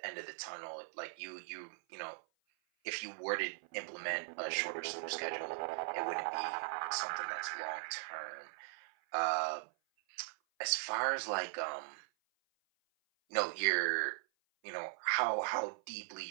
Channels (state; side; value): silent; left; 51 dB below the other